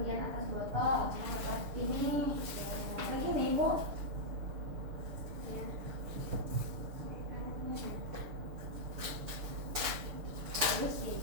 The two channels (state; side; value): late; left; 6.7 ms